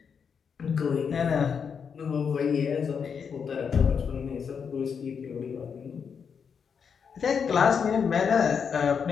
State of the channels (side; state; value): right; quieter; 6.6 dB